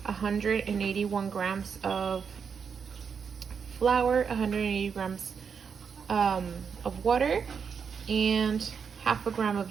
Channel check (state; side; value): quieter; left; 6.4 dB